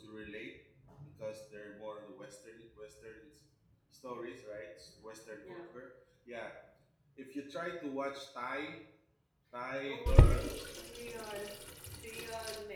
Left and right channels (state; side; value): identical; both; correlation 1.00